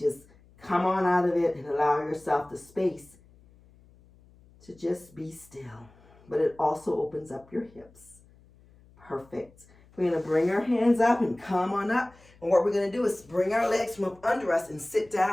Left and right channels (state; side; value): noise; left; hum, 27 dB below the sound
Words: come on out of it and allow yourself the space to just be still. But it also opens up your hips. Perfect. We're going to bring our hands up and come on up. And what we're going to do is bring our legs from up under us and sit